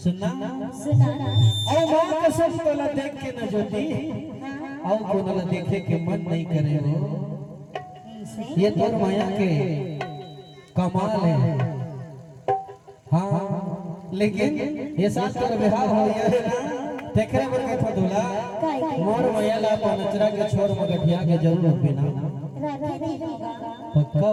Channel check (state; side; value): identical; both; correlation 1.00